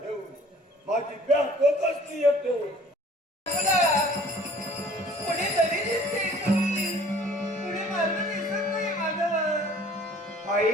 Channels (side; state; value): both; normal; correlation 0.52